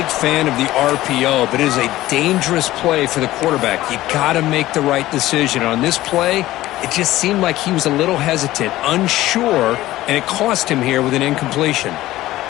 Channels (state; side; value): quieter; right; 16.0 dB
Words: fan of the RPO, but it is a dangerous play for the quarterback. You got to make the right decision. On this play, it just seemed like he was a little hesitant, unsure, and it cost him here with an incompletion.